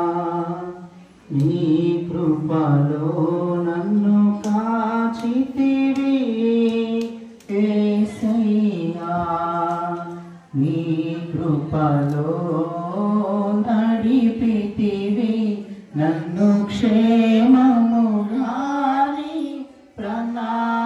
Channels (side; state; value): both; identical; correlation 1.00